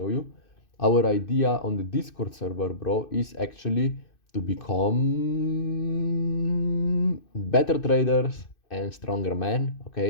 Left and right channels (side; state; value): right; late; 2.6 ms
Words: you. Our idea on the Discord server, bro, is actually to become better traders and stronger men.